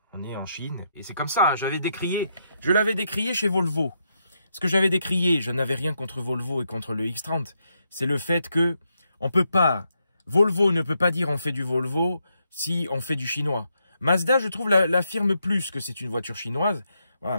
on est en Chine. Et c'est comme ça, hein, je l'avais décrié chez Volvo. Ce que j'avais décrié, je n'avais rien contre Volvo et contre le X30. C'est le fait que on peut pas, Volvo ne peut pas dire on fait du Volvo si on fait du chinois. Mazda, je trouve, l'affirme plus que c'est une voiture chinoise. Voilà,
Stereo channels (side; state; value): both; inverted; correlation -0.80